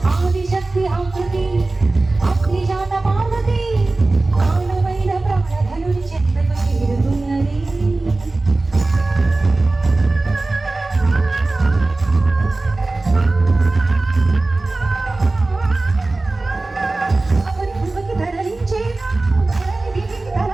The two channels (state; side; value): quieter; left; 3.2 dB